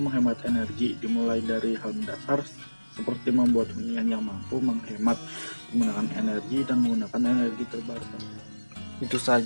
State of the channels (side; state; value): both; inverted; correlation -1.00